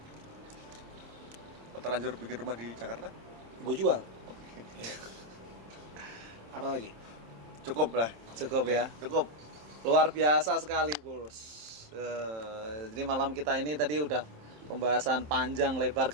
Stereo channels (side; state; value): left; late; 27 ms